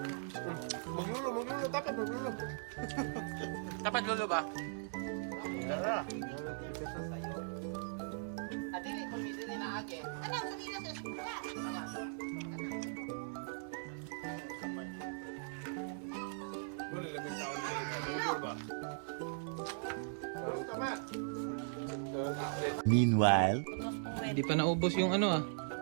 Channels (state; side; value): silent; left; digital silence